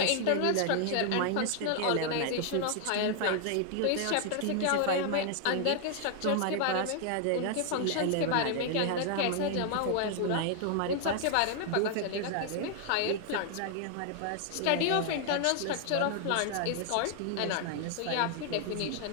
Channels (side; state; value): both; different; correlation 0.00